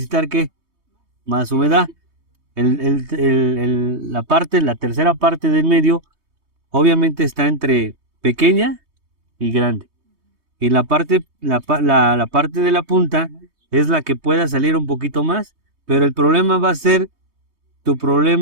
¿qué? Más humedad. La tercera parte del medio, obviamente está entre pequeña y grande. Y la parte de la punta es la que pueda salir un poquito más, pero el problema va a ser tu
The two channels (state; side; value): late; left; 3.2 ms